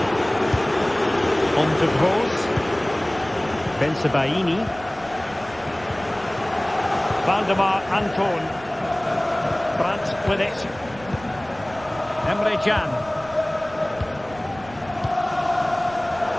On to Gross. Bensebaini. Valdemar Anton. Brandt with it. Emre Can.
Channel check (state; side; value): noise; right; rumble, 20 dB below the sound